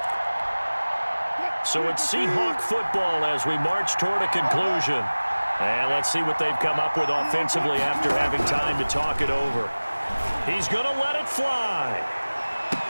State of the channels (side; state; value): both; inverted; correlation -1.00